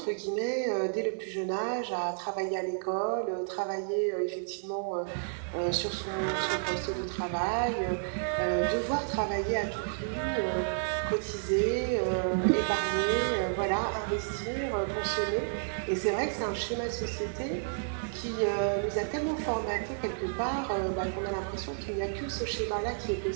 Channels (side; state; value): left; silent; 57 dB below the other